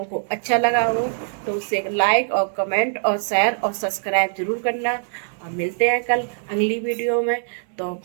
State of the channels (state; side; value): silent; left; 64 dB below the other